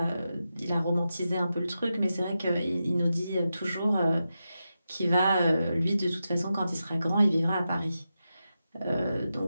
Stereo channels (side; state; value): both; inverted; correlation -0.90